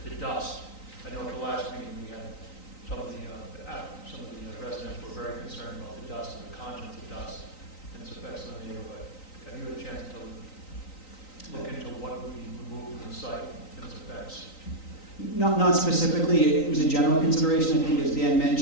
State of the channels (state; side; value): late; right; 3.9 ms